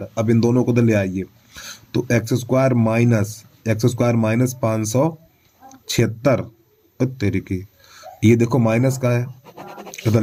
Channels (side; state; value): both; identical; correlation 1.00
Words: अब इन दोनों को तो ले आइए, तो एक्स स्क्वायर माइनस 576 तेरी की, ये देखो माइनस का है, इधर